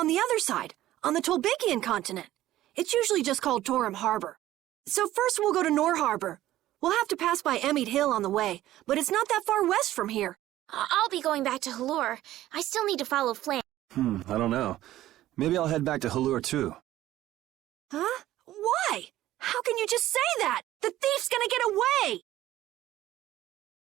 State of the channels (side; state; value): left; quieter; 14.4 dB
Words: the other side, on the Tolbikian continent. It's usually just called Torim Harbor. So first we'll go to Nor Harbor. We'll have to pass by Emmett Hill on the way, but it's not that far west from here. I'll be going back to Halure. I still need to follow Flynn. I don't know. Maybe I'll head back to Halure too. Huh? Why? How can you just say that? The thief's gonna get away!